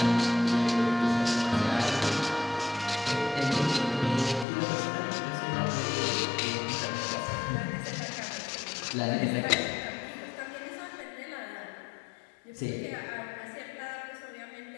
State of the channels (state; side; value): drops out; right; at 4.5 s